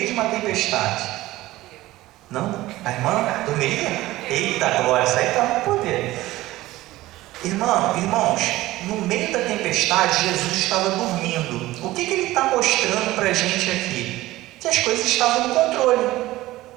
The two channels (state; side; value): quieter; left; 17.3 dB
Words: de uma tempestade? Não? A irmã dormiria? Eita glória, isso aí está no poder. Irmãos, no meio da tempestade, Jesus estava dormindo. O que ele está mostrando para a gente aqui? Que as coisas estavam no controle.